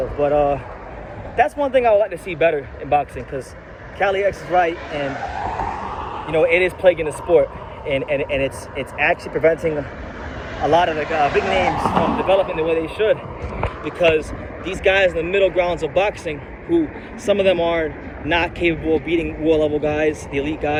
But that's one thing I would like to see better in boxing, because Cali X is right, and you know, it is plaguing the sport, and it's actually preventing a lot of the big names from developing the way they should, because these guys in the middle grounds of boxing, who some of them are not capable of beating world level guys, the elite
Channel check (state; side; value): identical; both; correlation 1.00